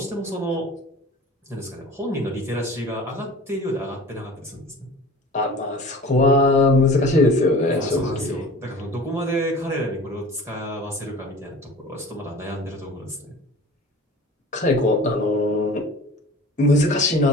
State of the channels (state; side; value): normal; both; correlation 0.41